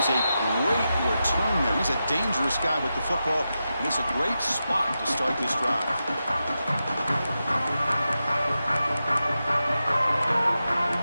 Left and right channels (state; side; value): inverted; both; correlation -0.90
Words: a great return there. He's a dangerous guy with the football, and it's a great spot to start this drive.